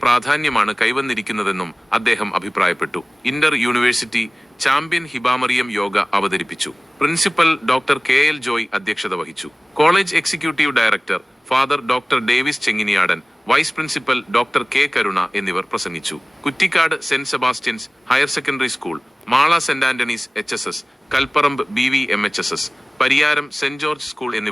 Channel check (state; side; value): normal; both; correlation 0.98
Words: പ്രാധാന്യമാണ് കൈവന്നിരിക്കുന്നതെന്നും അദ്ദേഹം അഭിപ്രായപ്പെട്ടു. ഇന്റർ യൂണിവേഴ്സിറ്റി ചാമ്പ്യൻ ഹിബാമറിയം യോഗ അവതരിപ്പിച്ചു. പ്രിൻസിപ്പൽ ഡോക്ടർ KL ജോയ് അധ്യക്ഷത വഹിച്ചു. College executive director father doctor Davis Chenginiyadan, vice principal doctor K കരുണ എന്നിവർ പ്രസംഗിച്ചു. കുറ്റിക്കാട് saint Sebastian's higher secondary school, Mala saint Antony's HSS, Kalparambu BVMHSS, Pariyaram saint George school